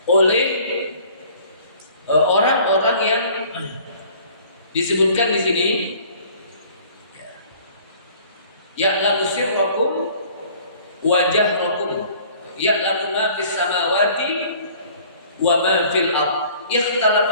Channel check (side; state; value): both; inverted; correlation -0.52